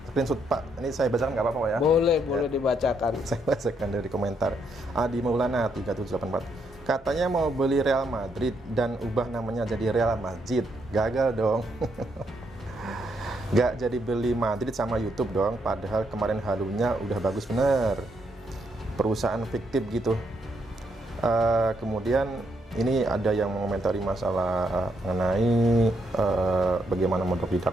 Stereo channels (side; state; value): both; normal; correlation 0.76